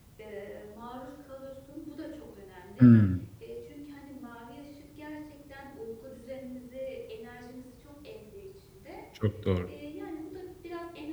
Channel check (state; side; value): identical; both; correlation 1.00